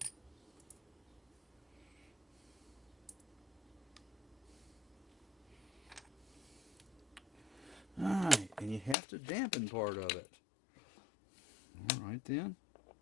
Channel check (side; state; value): right; drops out; at 9.0 s